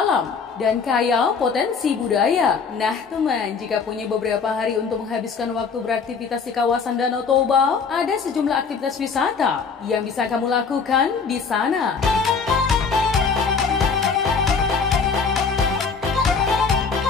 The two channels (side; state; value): right; quieter; 5.4 dB